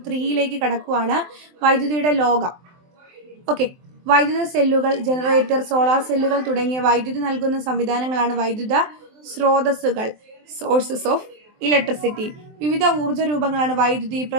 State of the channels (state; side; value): late; left; 23 ms